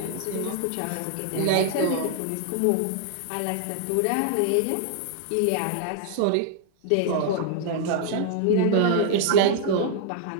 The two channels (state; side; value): different; both; correlation 0.00